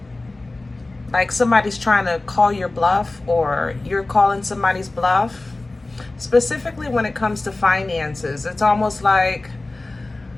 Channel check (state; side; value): quieter; right; 3.0 dB